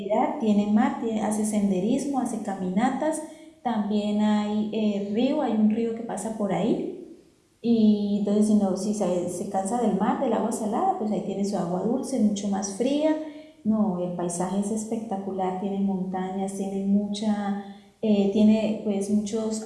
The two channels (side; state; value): both; identical; correlation 1.00